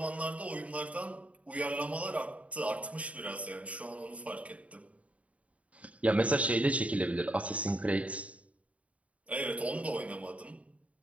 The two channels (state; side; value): late; left; 0.066 ms